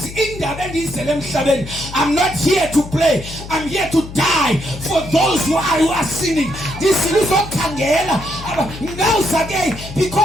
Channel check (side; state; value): left; noise; hum, 12 dB below the sound